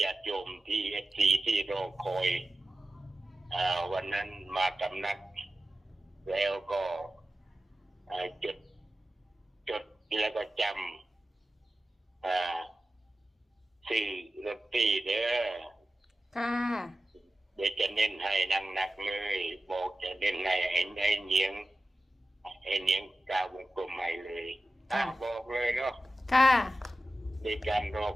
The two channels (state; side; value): normal; both; correlation 0.93